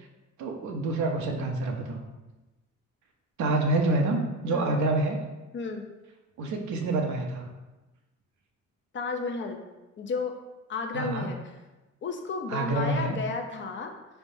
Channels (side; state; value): both; normal; correlation 0.17